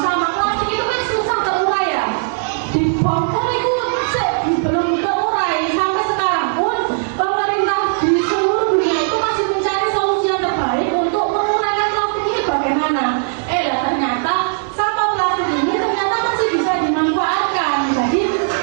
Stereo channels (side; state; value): left; silent; digital silence